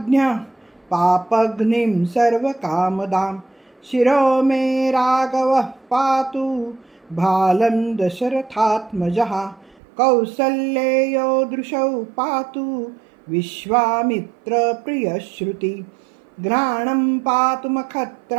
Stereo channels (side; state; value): left; drops out; at 9.8 s